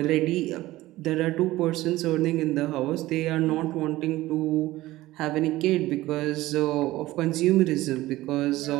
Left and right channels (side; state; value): left; quieter; 17.1 dB